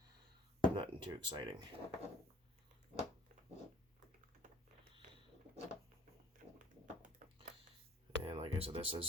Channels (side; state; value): both; normal; correlation 0.54